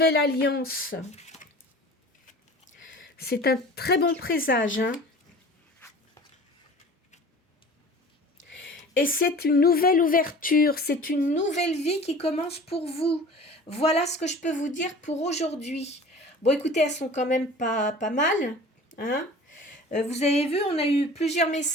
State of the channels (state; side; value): normal; both; correlation 0.42